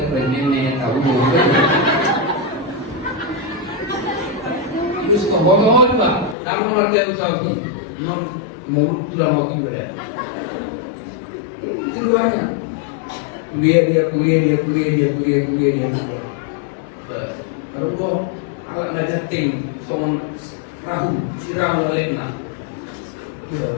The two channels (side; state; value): right; drops out; at 6.4 s